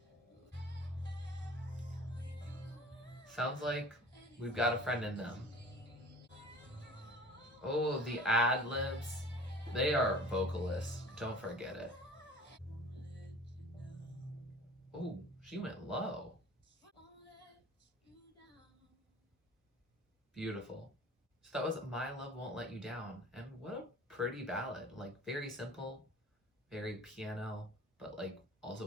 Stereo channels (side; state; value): both; normal; correlation 0.45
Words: Sounds like we've got a friend in them. Oh, the ad libs. They are vocalists. Don't forget it. Oh, she went low. Beautiful. So that was My Love Won't Let You Down. And what a pretty ballad. Like, very simple, very piano, but like